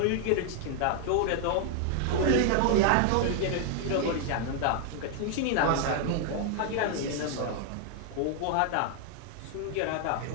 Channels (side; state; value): both; different; correlation 0.00